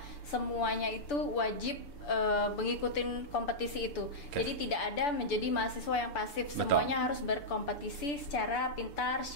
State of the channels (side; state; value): right; late; 6.9 ms